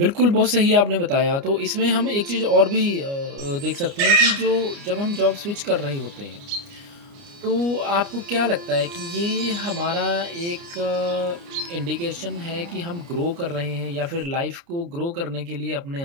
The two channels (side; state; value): left; late; 29 ms